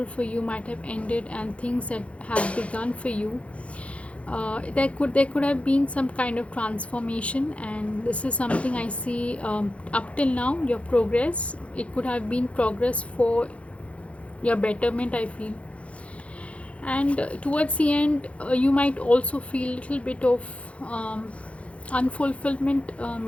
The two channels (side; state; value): right; late; 0.063 ms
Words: for you might have ended, and things that have begun for you. There could have been some kind of transformation, and this is something I see up till now. Your progress, it could have been progress for your betterment, I feel. And towards the end, you might also feel a little bit of unfulfillment,